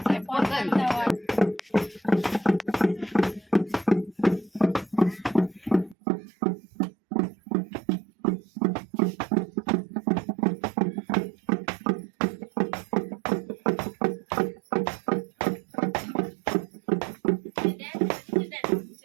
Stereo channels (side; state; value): left; drops out; at 6.0 s